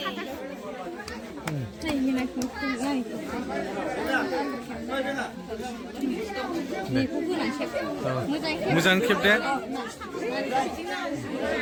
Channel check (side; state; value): both; identical; correlation 1.00